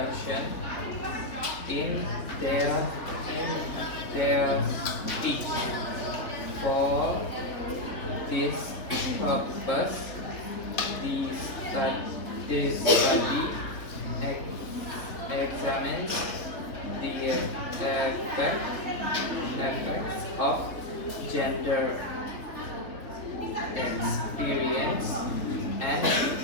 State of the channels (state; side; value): late; right; 3.6 ms